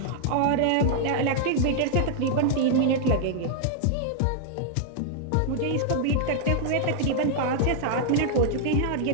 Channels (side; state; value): both; different; correlation -0.01